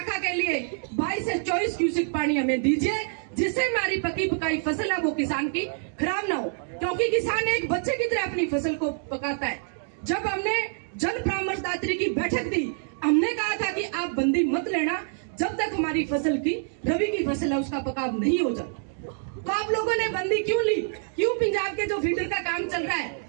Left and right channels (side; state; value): left; silent; 61 dB below the other